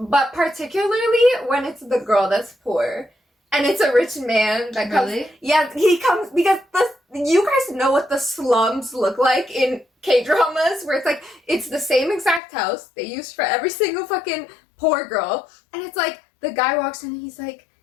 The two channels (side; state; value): right; drops out; at 12.4 s